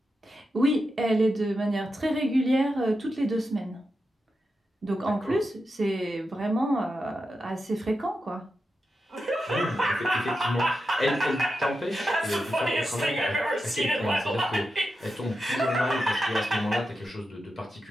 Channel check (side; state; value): both; normal; correlation 0.89